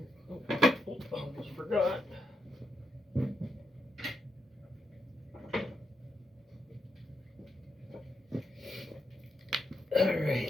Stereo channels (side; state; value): both; normal; correlation 0.82